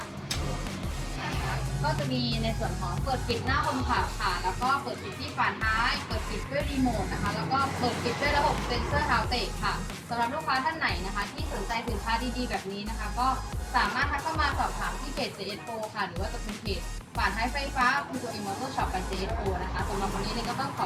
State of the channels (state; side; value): identical; both; correlation 1.00